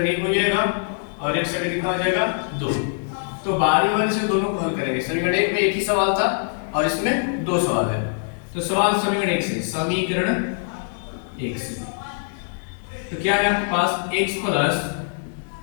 1 हो जाएगा और एक समीकरण कितना हो जाएगा 2। तो बारी बारी से दोनों को हल करेंगे। समीकरण 1 में एक ही सवाल था और इसमें दो सवाल है। तो सवाल समीकरण 1 से, समीकरण 1 से तो क्या है आपके पास x plus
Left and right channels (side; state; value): right; silent; digital silence